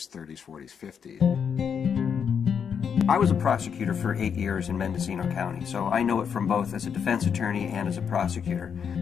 30s, 40s, 50s. I was a prosecutor for 8 years in Mendocino County, so I know it from both as a defense attorney and as a prosecutor.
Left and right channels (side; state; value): right; quieter; 7.2 dB